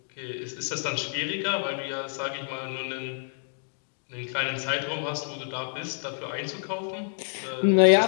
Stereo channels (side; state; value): right; silent; digital silence